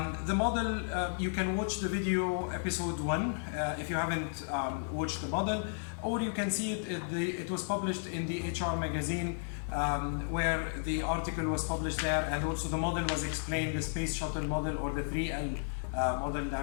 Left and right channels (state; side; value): silent; right; 55 dB below the other